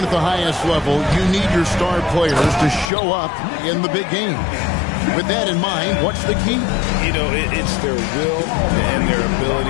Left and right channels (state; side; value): drops out; right; at 2.9 s